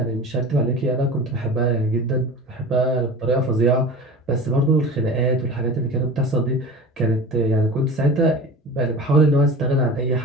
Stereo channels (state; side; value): normal; both; correlation 0.35